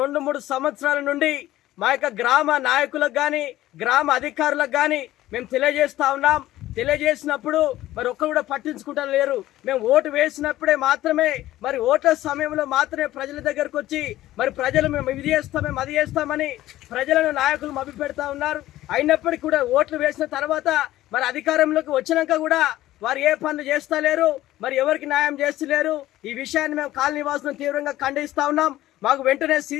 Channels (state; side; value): quieter; right; 15.1 dB